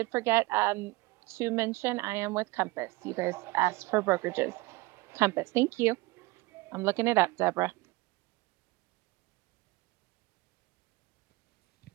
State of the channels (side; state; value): left; quieter; 22.1 dB